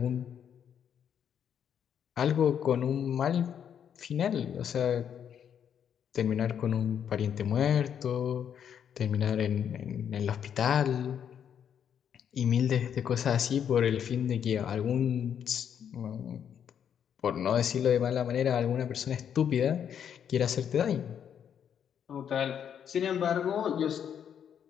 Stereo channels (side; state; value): right; quieter; 8.5 dB